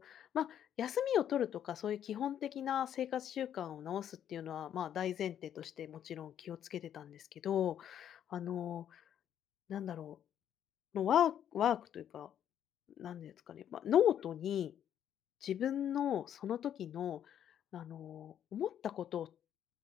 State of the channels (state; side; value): quieter; right; 9.9 dB